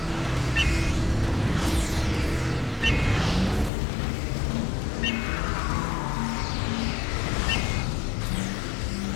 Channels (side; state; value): right; drops out; at 3.7 s